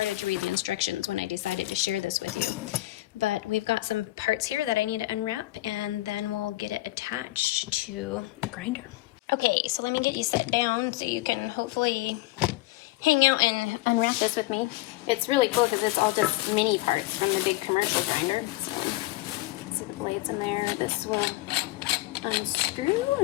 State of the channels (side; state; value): right; quieter; 18.8 dB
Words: to read the instructions when I decided to share this with you. But we've got some parts here that I need to unwrap, and then we'll get it attached to the grinder. Okay, so let me get you set down so you can hopefully hang out and unwrap this with me. It's really cool because it's all just mini parts from the big commercial grinder. So see the blades in there. This will unscrew,